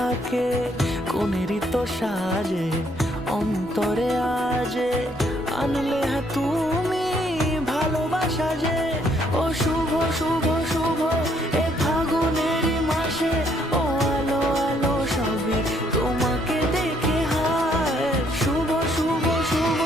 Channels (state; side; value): noise; left; rumble, 23 dB below the sound